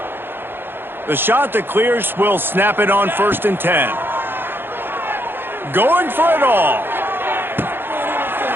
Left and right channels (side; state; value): left; late; 0.10 ms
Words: The shot that clears will snap it on 1st and 10. Going for it all.